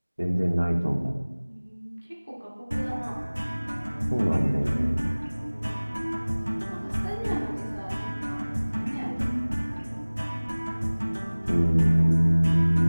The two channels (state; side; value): inverted; both; correlation -1.00